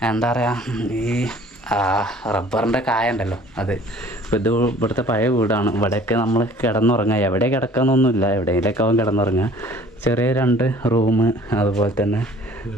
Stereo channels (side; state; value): both; normal; correlation 0.52